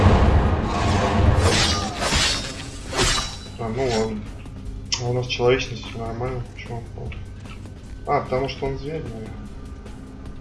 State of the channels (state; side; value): identical; both; correlation 1.00